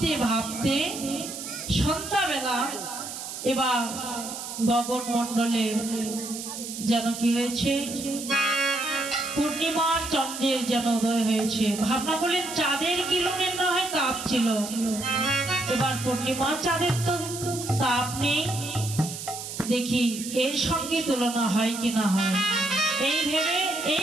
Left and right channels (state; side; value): noise; right; hiss, 8 dB below the sound